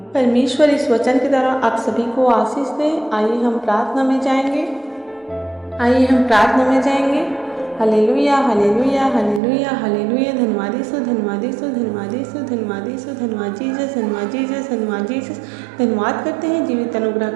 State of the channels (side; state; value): left; drops out; at 9.4 s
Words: परमेश्वर इस वचन के द्वारा आप सभी को आशीष दे। आइए हम प्रार्थना में जाएंगे। Hallelujah, hallelujah, hallelujah, hallelujah. धन्यवाद यीशु, धन्यवाद यीशु, धन्यवाद यीशु, धन्यवाद यीशु, धन्यवाद जीसस, धन्यवाद जीसस, धन्यवाद जीसस। धन्यवाद करते हैं जीवित